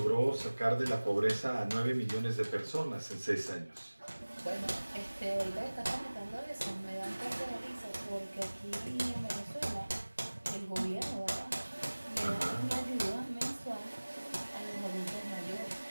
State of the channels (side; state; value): both; inverted; correlation -1.00